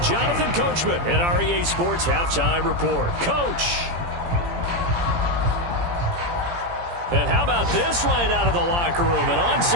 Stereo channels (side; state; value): left; late; 17 ms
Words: Coachman at our EA Sports Halftime Report. Coach. And how about this right out of the locker room? An